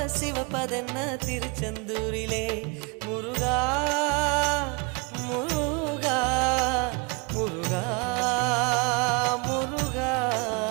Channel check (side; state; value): left; quieter; 31.3 dB